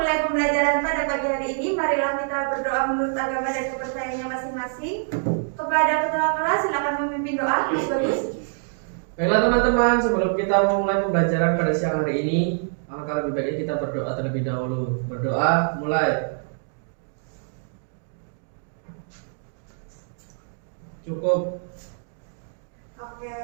pembelajaran pada pagi hari ini, marilah kita berdoa menurut agama dan kepercayaannya masing-masing. Kepada ketua kelas silakan memimpin doa. Bagus. Baiklah teman-teman, sebelum kita memulai pembelajaran pada siang hari ini, alangkah lebih baiknya kita berdoa terlebih dahulu. Berdoa, mulai. Cukup. Oke.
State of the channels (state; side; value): silent; left; digital silence